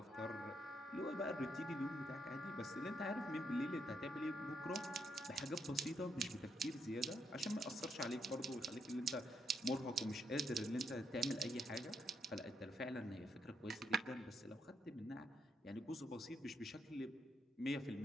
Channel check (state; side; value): normal; both; correlation 0.77